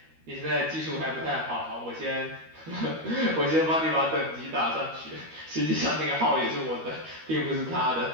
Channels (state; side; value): late; left; 13 ms